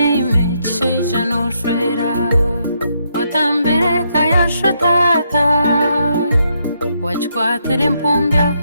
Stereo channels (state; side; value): inverted; both; correlation -0.77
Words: cisheja noshwera, watambire kayashotata, wajikwatire mpumbya